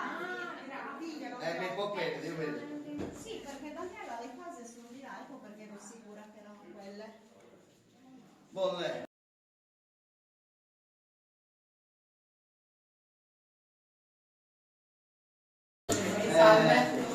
Mi può credere, io vedo. Sì, perché Daniela le case sono di là, ecco perché ero sicura che erano quelle. Bolle. Salve.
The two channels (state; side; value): identical; both; correlation 1.00